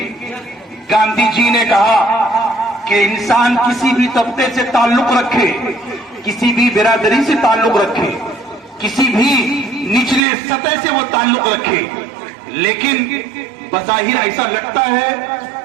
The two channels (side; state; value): left; drops out; at 10.2 s